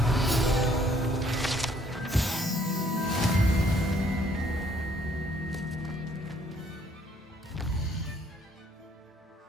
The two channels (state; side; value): normal; both; correlation 0.64